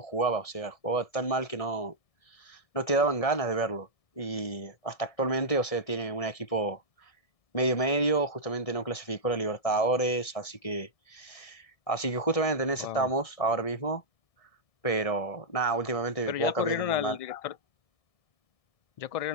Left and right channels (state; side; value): late; right; 1.7 ms